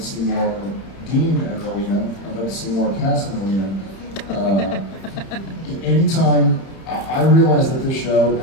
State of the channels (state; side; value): late; right; 31 ms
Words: see more Dean and Rowena. I'd love to see more Cass and Rowena. Anytime I realize that this show,